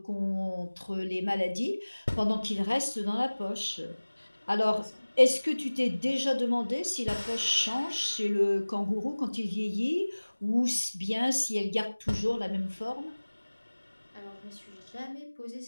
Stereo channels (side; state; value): both; inverted; correlation -1.00